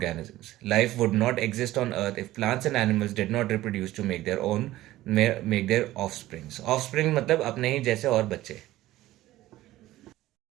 Life would not exist on earth if plants and animals did not reproduce to make their own make their offsprings. Offspring मतलब अपने ही जैसे और बच्चे।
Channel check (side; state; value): left; quieter; 15.9 dB